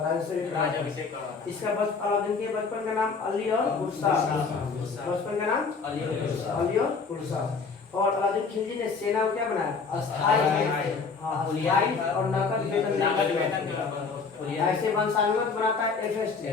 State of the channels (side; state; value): right; quieter; 4.9 dB